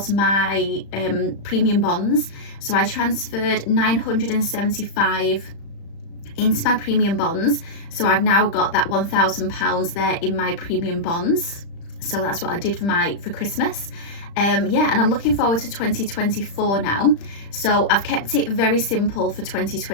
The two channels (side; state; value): right; late; 35 ms